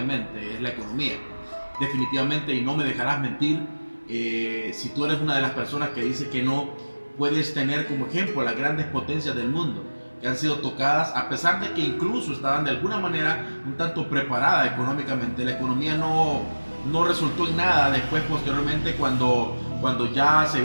es la economía. Definitivamente, y no me dejarás mentir, si tú eres una de las personas que dice que no puedes tener como ejemplo a las grandes potencias del mundo que han sido tocadas, a pesar de que incluso estaban de alguna manera un tanto preparada económicamente. La economía no resultó en nada después, posteriormente, cuando ya se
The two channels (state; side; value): inverted; both; correlation -1.00